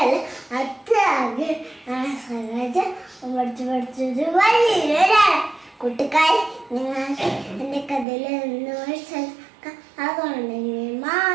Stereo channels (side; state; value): left; drops out; at 8.1 s